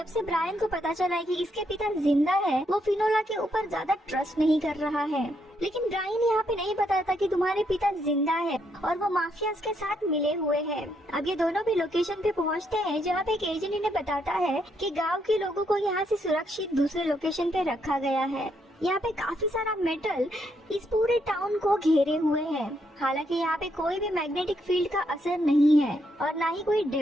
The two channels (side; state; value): both; normal; correlation 0.76